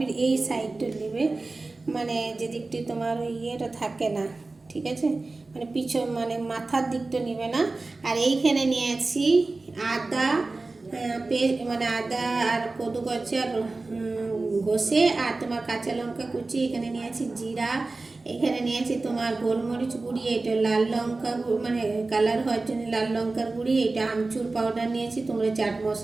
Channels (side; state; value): left; quieter; 3.4 dB